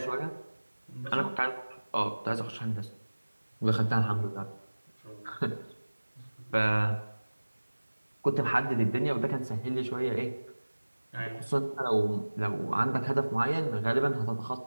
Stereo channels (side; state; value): both; inverted; correlation -1.00